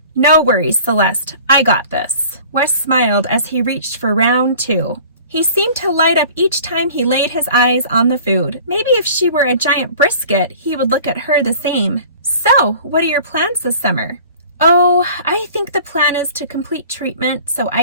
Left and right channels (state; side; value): inverted; both; correlation -0.46